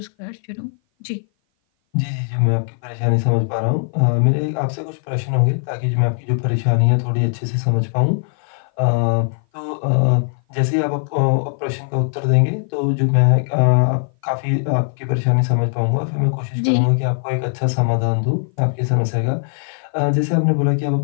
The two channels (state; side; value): silent; right; 57 dB below the other